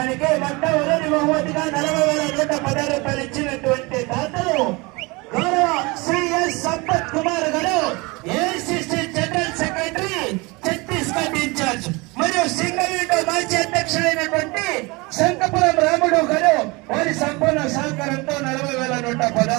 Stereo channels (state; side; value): quieter; left; 25.6 dB